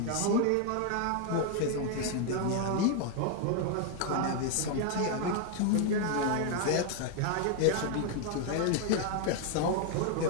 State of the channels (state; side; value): different; both; correlation 0.00